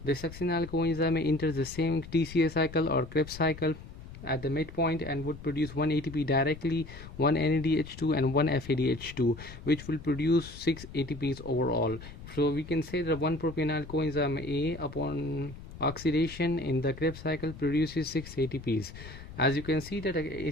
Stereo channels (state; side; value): noise; left; rumble, 15 dB below the sound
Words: The succinyl coenzyme A enters the same TCA cycle or Krebs cycle at the midpoint and would produce 1 ATP directly, 1 NADH2 and 1 FADH2, which will produce 6 ATPs overall. So we can say that 1 propionyl coenzyme A upon oxidation in the Krebs cycle produces 6 ATPs. As you can see that